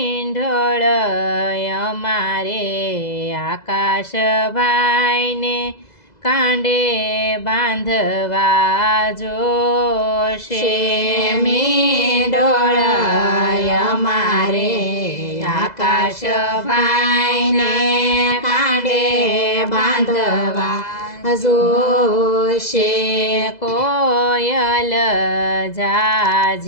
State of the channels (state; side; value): late; right; 2.0 ms